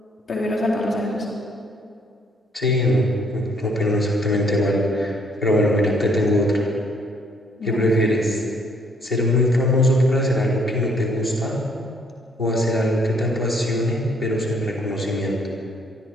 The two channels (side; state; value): both; normal; correlation 0.66